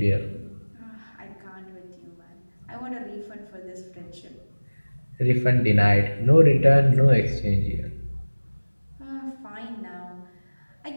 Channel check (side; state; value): both; inverted; correlation -1.00